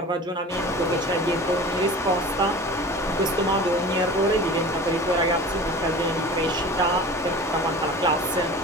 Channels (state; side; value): normal; both; correlation 0.38